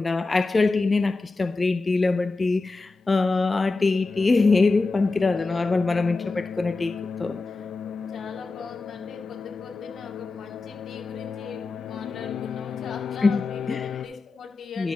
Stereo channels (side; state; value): right; quieter; 3.6 dB